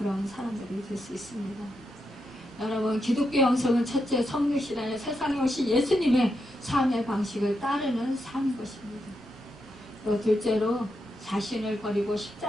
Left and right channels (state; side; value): normal; both; correlation 0.84